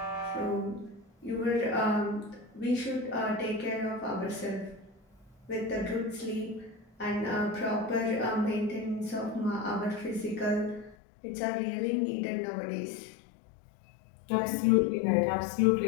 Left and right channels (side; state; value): right; drops out; at 11.0 s